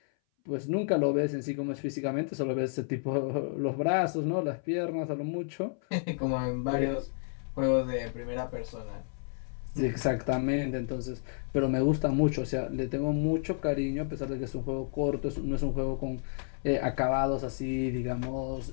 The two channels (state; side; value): silent; right; 57 dB below the other